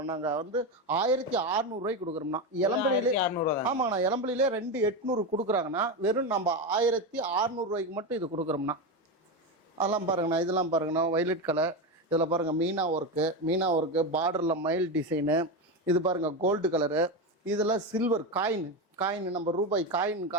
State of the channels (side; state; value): both; normal; correlation 0.15